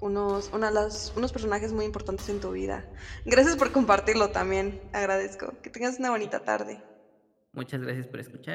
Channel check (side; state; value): both; identical; correlation 1.00